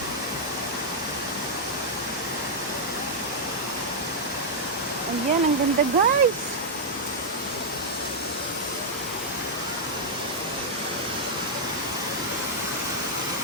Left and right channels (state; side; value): normal; both; correlation -0.05